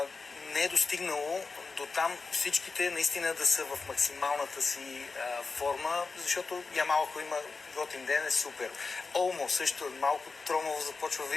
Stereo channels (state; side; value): quieter; right; 4.3 dB